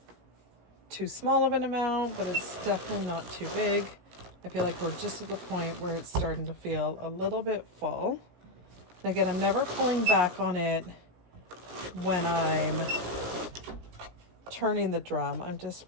too small of an amount, but it's definitely not too big. I feel like we're just at the point where it's starting to feel a little bit full. And again, I'm never pulling back on it when I'm turning the drum. I'm just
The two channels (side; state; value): left; late; 17 ms